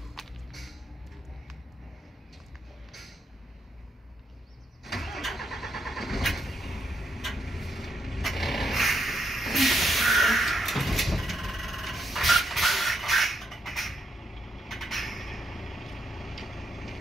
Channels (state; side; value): normal; both; correlation 0.78